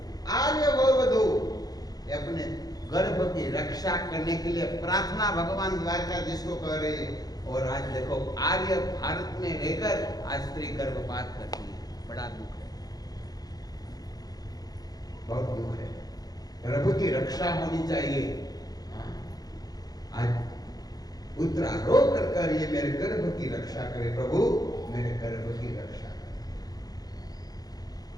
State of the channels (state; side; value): late; right; 0.19 ms